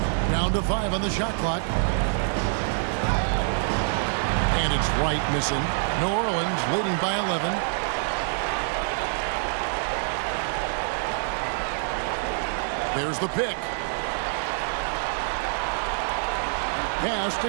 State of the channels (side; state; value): left; silent; 61 dB below the other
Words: Down to 5 on the shot clock. And it's Wright missing. New Orleans leading by 11. There's the pick. Pass